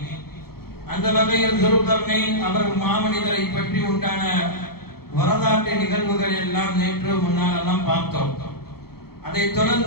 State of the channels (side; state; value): right; late; 0.95 ms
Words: அந்த வகையில் துல்கர்னைன் அவர் மாமனிதரை பற்றி உண்டான வரலாற்று நிகழ்வுகள் எல்லாம் நேற்று முன்னாலெல்லாம் பார்த்தோம். அதைத்